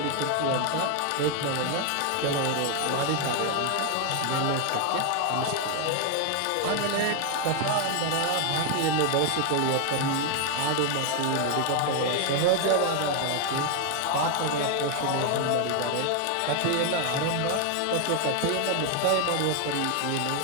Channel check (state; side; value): different; both; correlation 0.00